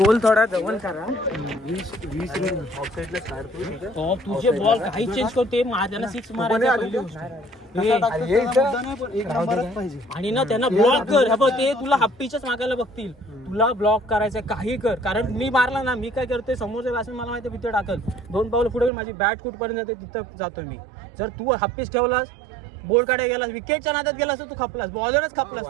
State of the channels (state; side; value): drops out; left; at 18.9 s